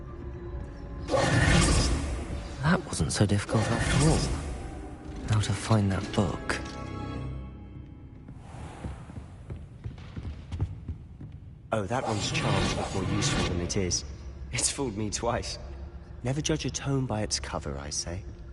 That wasn't so difficult after all. How to find that book. Oh, that one's charmed look more useful than it is. It's fooled me twice. Never judge a tome by its cover, I say.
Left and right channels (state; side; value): identical; both; correlation 1.00